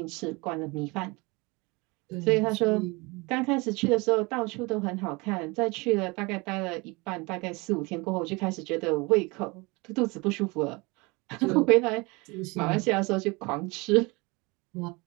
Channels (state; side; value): quieter; left; 26.1 dB